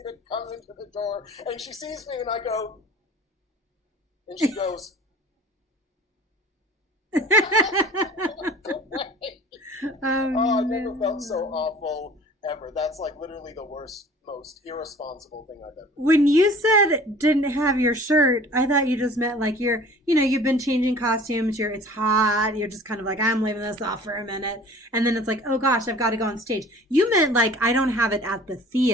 to come into the door, and she sees me, and I go, and she goes, "Oh, I never felt so no. awful ever." That's like literally the worst, most irresponsible thing I've ever done. When you said didn't have your shirt, I thought you just meant like you've been changing costumes, it's hot, you're just kind of like, I'm leaving this off for a minute. And then it's like, oh gosh, I've got to go on stage. You meant like, I don't have it at the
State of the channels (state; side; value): normal; both; correlation 0.46